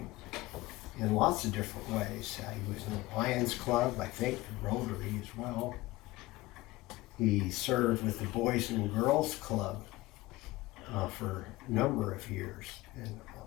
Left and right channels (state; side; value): quieter; right; 19.1 dB